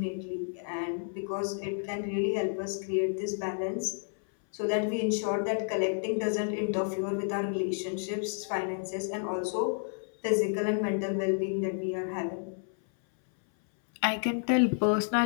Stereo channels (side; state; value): right; silent; 57 dB below the other